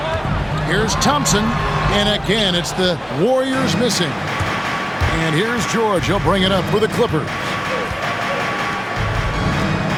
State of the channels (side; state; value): both; identical; correlation 1.00